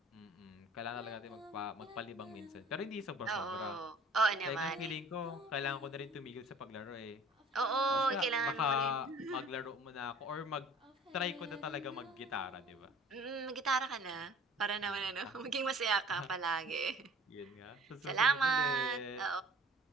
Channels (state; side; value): normal; both; correlation 0.49